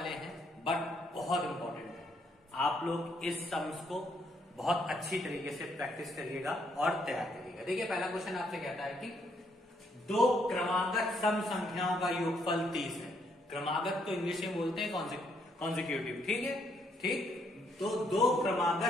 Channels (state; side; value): normal; both; correlation 0.72